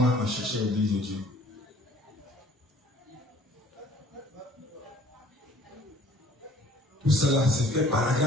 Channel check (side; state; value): both; normal; correlation 0.54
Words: on cherchait l'église de Dieu. Tout cela s'est fait par la